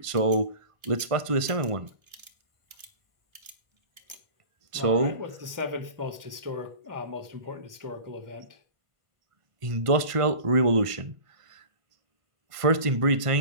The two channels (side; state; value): left; late; 1.5 ms